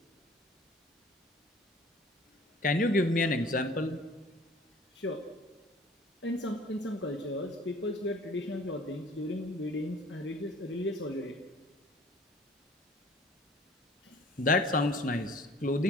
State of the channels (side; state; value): both; normal; correlation 0.50